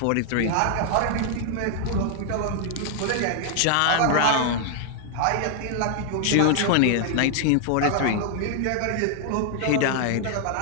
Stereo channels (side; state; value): both; different; correlation 0.00